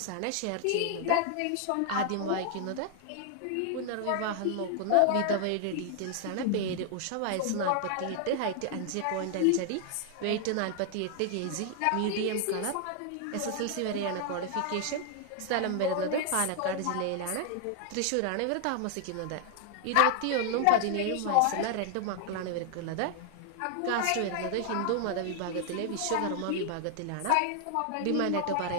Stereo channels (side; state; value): both; different; correlation 0.00